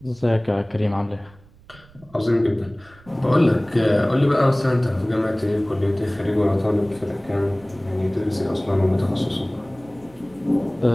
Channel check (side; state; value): right; noise; rumble, 25 dB below the sound